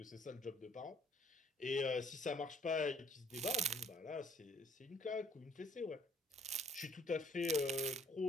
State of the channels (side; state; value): both; normal; correlation 0.60